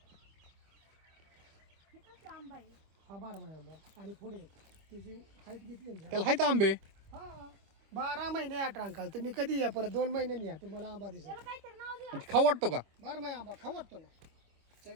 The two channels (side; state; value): left; late; 25 ms